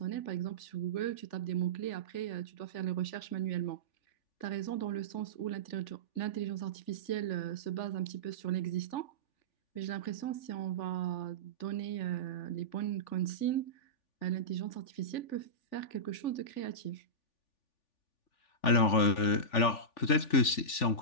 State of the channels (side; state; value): right; late; 3.4 ms